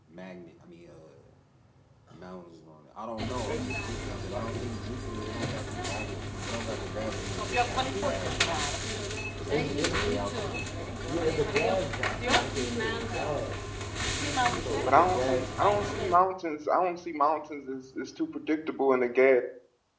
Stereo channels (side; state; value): both; identical; correlation 1.00